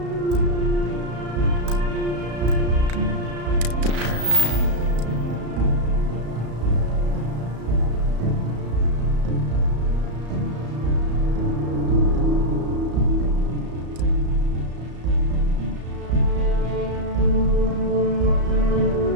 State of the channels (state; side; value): late; left; 34 ms